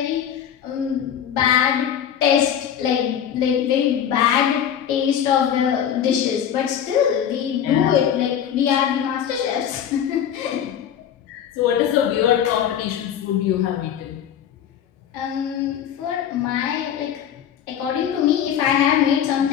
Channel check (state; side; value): quieter; right; 9.2 dB